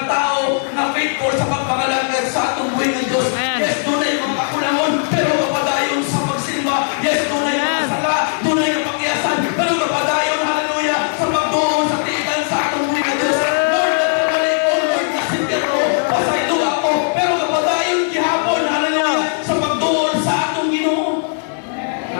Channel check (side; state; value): right; silent; 65 dB below the other